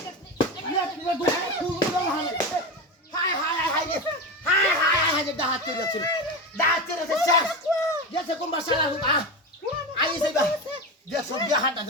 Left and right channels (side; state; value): both; normal; correlation 0.20